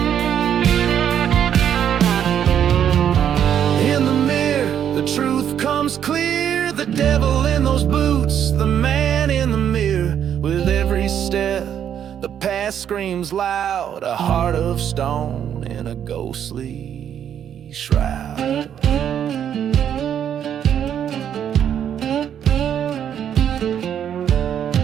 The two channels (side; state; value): left; quieter; 9.2 dB